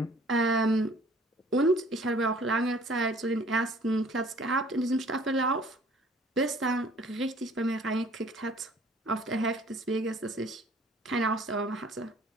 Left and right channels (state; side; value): normal; both; correlation 0.53